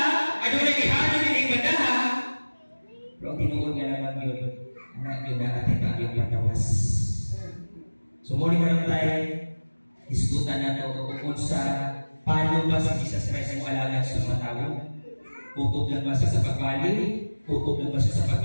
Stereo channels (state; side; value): inverted; both; correlation -1.00